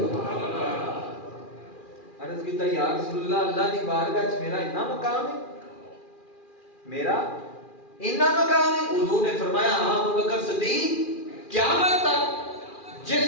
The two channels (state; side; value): late; right; 2.4 ms